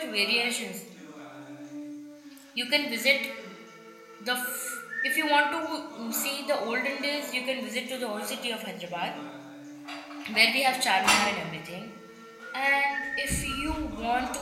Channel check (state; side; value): identical; both; correlation 1.00